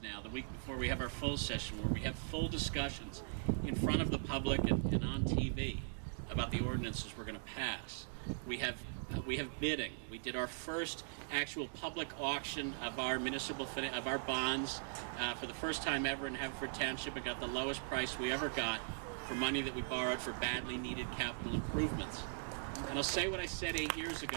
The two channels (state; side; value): silent; left; digital silence